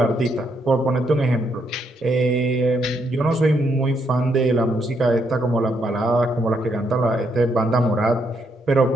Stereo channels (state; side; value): normal; both; correlation 0.75